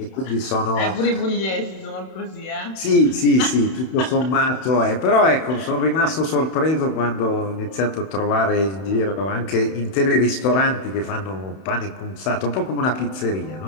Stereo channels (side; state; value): right; late; 31 ms